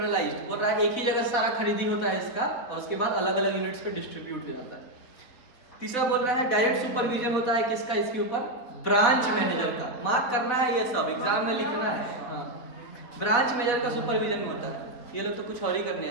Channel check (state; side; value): late; right; 4.3 ms